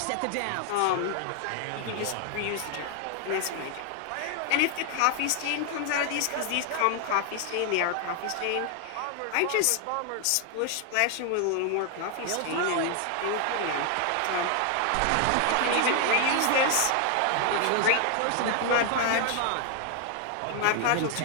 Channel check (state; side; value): different; both; correlation 0.00